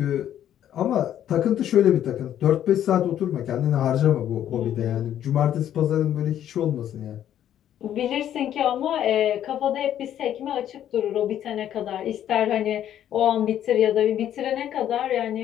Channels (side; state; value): right; quieter; 10.8 dB